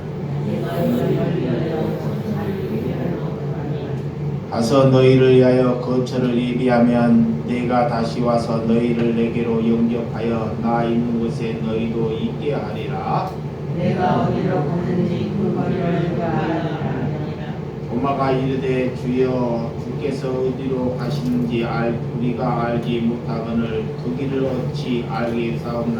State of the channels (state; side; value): identical; both; correlation 1.00